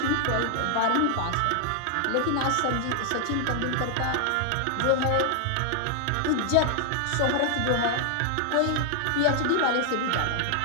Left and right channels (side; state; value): both; different; correlation 0.00